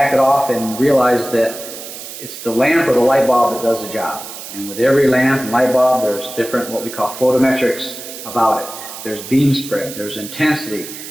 it off and realize that it's the lamp or the light bulb that does the job. And with every lamp and light bulb, there's different what we call photometrics about it. There's beam spread, there's intensity,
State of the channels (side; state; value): right; noise; hiss, 12 dB below the sound